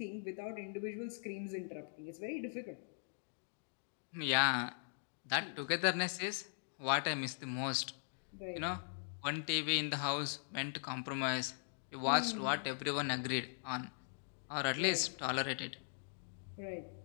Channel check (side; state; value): right; silent; digital silence